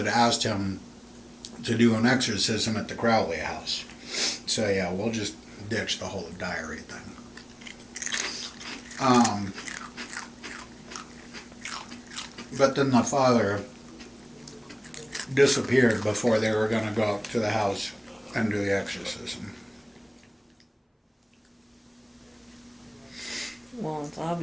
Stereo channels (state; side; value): identical; both; correlation 1.00